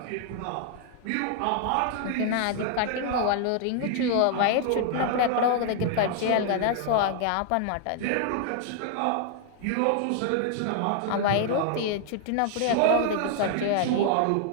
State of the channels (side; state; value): both; different; correlation 0.00